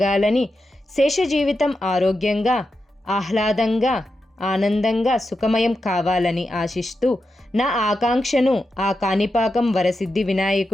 శేష జీవితం ఆరోగ్యంగా, ఆహ్లాదంగా, ఆనందంగా సుఖమయం కావాలని ఆశిస్తూ నా ఆకాంక్షను ఆ కాణిపాకం వరసిద్ధి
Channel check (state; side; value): normal; both; correlation 0.88